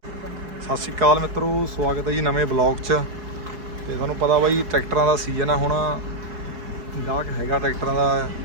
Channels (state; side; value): late; left; 4.7 ms